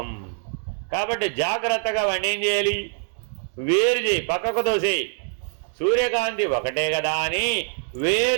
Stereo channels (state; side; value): silent; left; digital silence